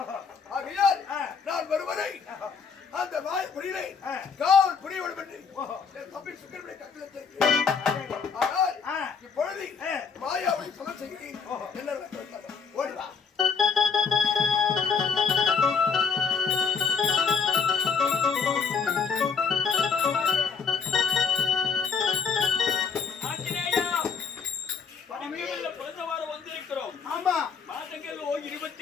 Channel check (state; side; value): quieter; right; 5.8 dB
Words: ஆகையால் நான் வருவதை அந்த மாய புரியலை காவல் புரிய வேண்டும் என்று என் தம்பி சுக்கரனுடைய கட்டளத்திற்கு. ஆனால் இப்பொழுது மாயாவை சொல்ல செய்கிறேன். என்ன ஓடிவா